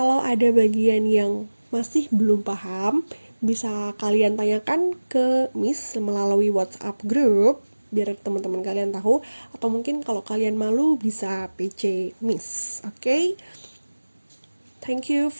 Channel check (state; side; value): inverted; both; correlation -1.00